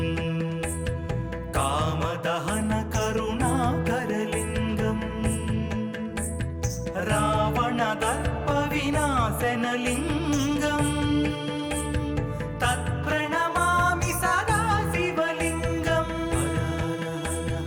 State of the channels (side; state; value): both; identical; correlation 1.00